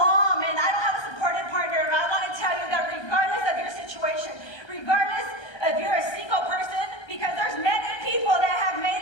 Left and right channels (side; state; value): right; late; 1.3 ms